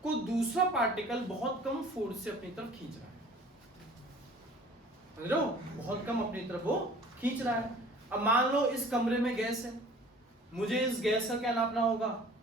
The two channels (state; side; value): normal; both; correlation 0.49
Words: को दूसरा पार्टिकल बहुत कम फोर्स से अपनी तरफ खींच रहा है, समझ रहे हो, बहुत कम अपनी तरफ वो खींच रहा है। अब मान लो इस कमरे में गैस है, मुझे इस गैस का क्या नापना होगा,